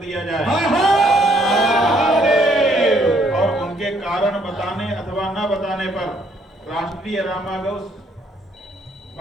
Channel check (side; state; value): both; normal; correlation 0.67